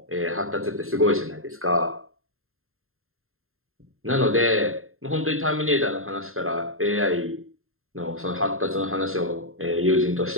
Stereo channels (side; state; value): left; late; 0.61 ms